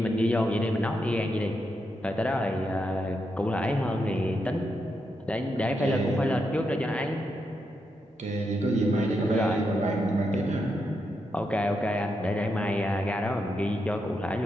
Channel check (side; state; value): both; normal; correlation 0.83